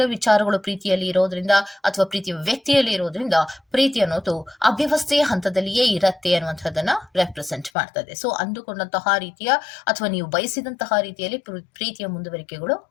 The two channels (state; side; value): drops out; right; at 7.7 s